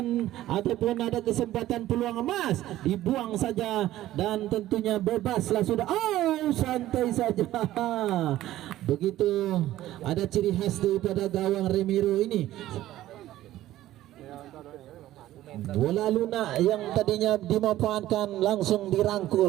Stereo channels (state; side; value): quieter; left; 14.4 dB